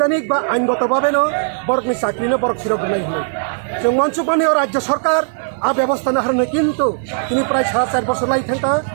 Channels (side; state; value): left; silent; digital silence